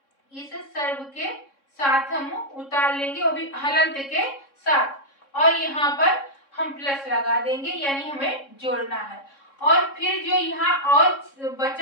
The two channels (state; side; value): late; right; 3.6 ms